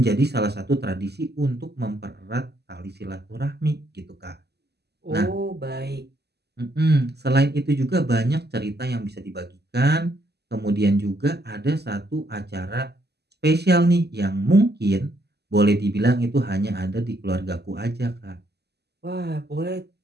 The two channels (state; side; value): late; left; 0.48 ms